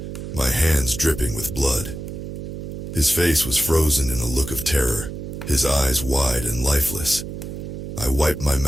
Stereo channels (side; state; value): right; noise; hum, 8 dB below the sound